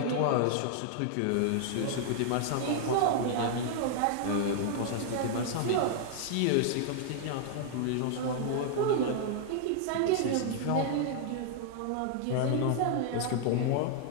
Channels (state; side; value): different; both; correlation -0.01